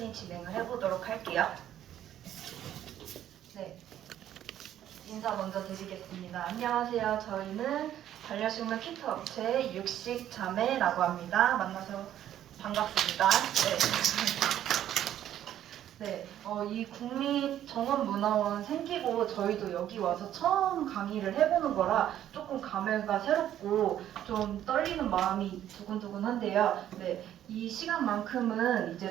진행을 해보도록 할게요. 네, 인사 먼저 드리겠습니다. 안녕하세요. 저희는 반려식물 키트 업체 육식자매라고 합니다. 만나서 반갑습니다. 네, 이 국립정원문화원 생기고 저희도 여기 와서 처음 강의를 해보는 거라 조금 감회가 새롭고 좀 떨리는 마음이 두근두근한데요. 네, 이 시간만큼은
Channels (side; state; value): left; quieter; 11.4 dB